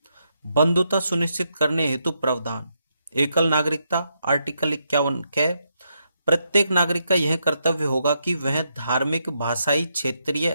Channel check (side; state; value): both; inverted; correlation -0.80